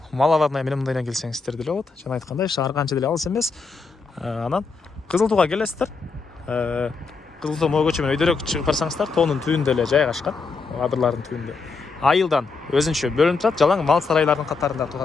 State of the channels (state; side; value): quieter; right; 4.5 dB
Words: Малаварная менен мындайдан келсеңиздер деле болот. Жана айткандай, шаар канча деле алыс эмес. Анан Кызыл Тууга келесиздер. Кызыл Туу могу көчө менен өйдөрөөк чыгып барсаңыздар, тоонун түбүндө эле жайгашкан, адырлардын түбүндө. Айылдан өзүнчө бөлүнүп турат, жалаң мал сарайлардын катарында